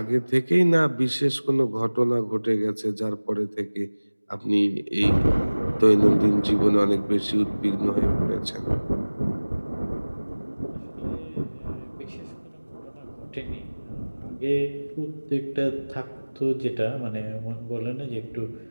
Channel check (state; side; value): inverted; both; correlation -1.00